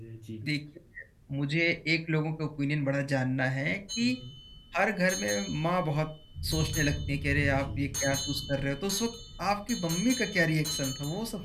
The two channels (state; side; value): identical; both; correlation 1.00